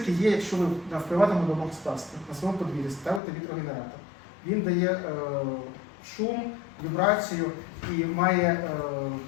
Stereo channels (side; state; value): right; drops out; at 3.2 s